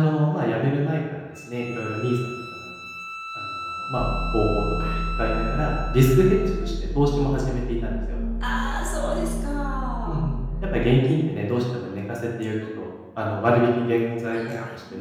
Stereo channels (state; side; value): identical; both; correlation 1.00